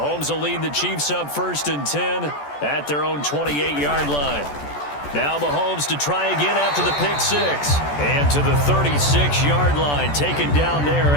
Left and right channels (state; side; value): late; right; 14 ms